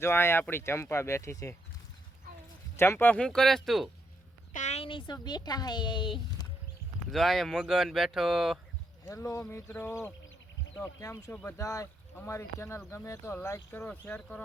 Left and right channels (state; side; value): normal; both; correlation 0.78